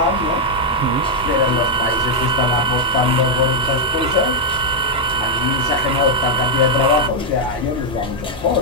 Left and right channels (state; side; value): normal; both; correlation 0.00